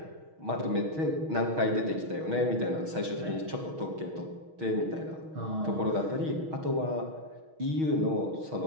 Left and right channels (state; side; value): late; left; 6.3 ms